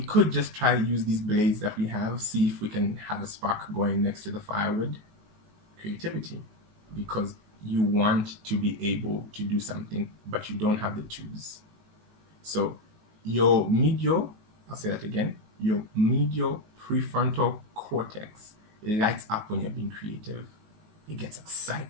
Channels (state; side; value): late; left; 19 ms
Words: just try to use these blades that we have, see if we can have a spark going next to the firewood. Creativity. Because you want to be able to do something, but you don't have the tools. So your medial, I'll say that again, your medial prefrontal cortex lights up when you're being creative. It gets